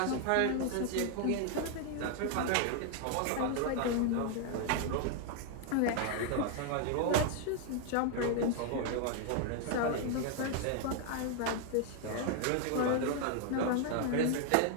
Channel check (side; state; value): both; different; correlation 0.00